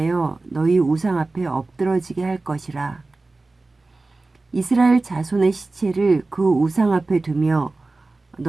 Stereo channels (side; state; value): left; quieter; 3.4 dB